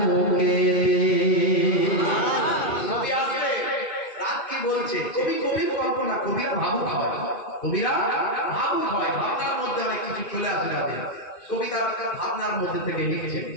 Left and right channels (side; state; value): right; late; 2.5 ms